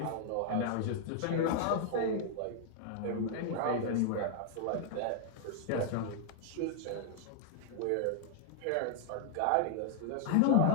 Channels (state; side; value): different; both; correlation -0.01